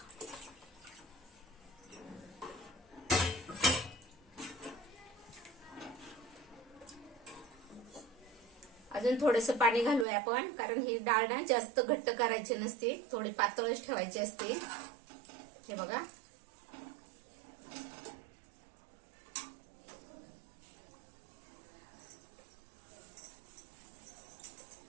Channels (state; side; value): drops out; left; at 10.1 s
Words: अजून थोडंसं पाणी घालूया आपण, कारण ही डाळ ना जास्त घट्ट करायची नसते, थोडी पातळच ठेवायची असते. हे बघा,